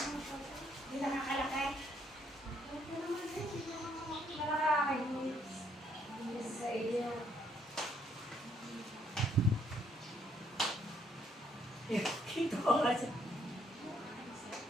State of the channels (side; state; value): both; normal; correlation 0.69